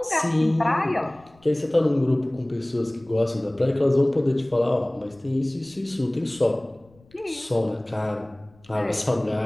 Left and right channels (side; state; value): left; noise; rumble, 29 dB below the sound